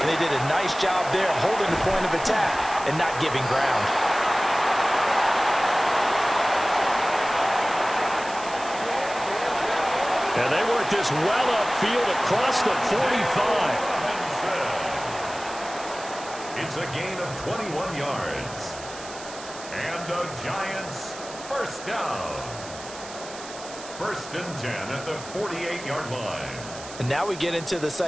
they did a nice job there holding the point of attack and not giving ground. And they work this well upfield across the 45. It's a gain of 21 yards. And the Giants first down. First and 10 at the 48-yard line. And now we get into the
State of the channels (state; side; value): noise; right; hiss, 14 dB below the sound